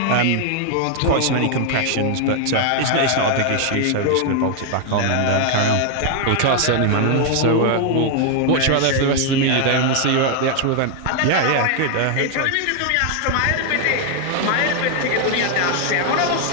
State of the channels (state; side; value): different; both; correlation 0.00